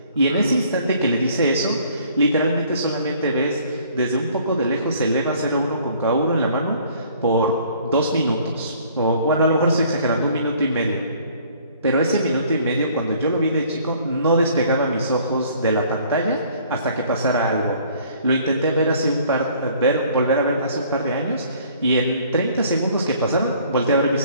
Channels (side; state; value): both; inverted; correlation -0.57